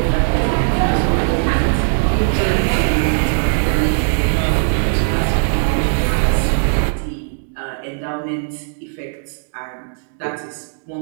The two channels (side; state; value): left; silent; digital silence